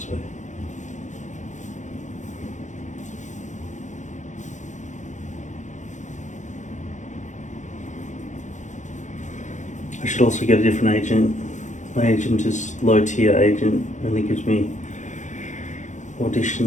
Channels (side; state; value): right; late; 0.35 ms